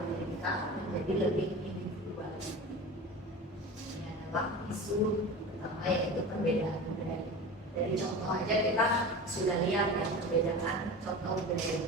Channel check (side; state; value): both; normal; correlation 0.32